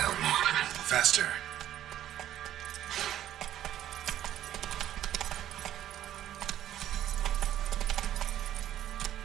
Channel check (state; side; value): quieter; left; 11.9 dB